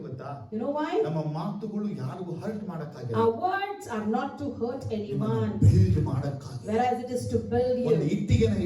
ಗೊತ್ತಾ? You know why? ನಮ್ಮ ಮಾತುಗಳು ಯಾರಿಗೂ ಹರ್ಟ್ ಮಾಡಕ್ಕಾಗಲ್ಲ. Our words are not to hurt anyone, build ಮಾಡಕ್ಕಾಗಲ್ಲ. whereas it is to build ಒಂದು you. ಇಟ್ಟಿಗೆನ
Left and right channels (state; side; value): identical; both; correlation 1.00